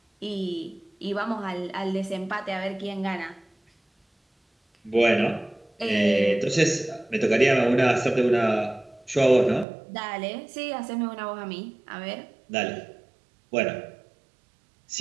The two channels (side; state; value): left; drops out; at 9.7 s